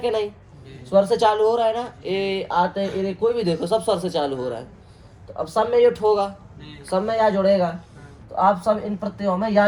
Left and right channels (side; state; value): both; identical; correlation 1.00